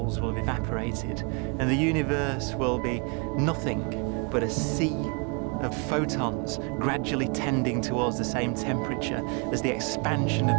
will have evaporated and the universe will be nothing but a sea of photons gradually tending towards the same temperature as the expansion of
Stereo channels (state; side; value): quieter; left; 34.0 dB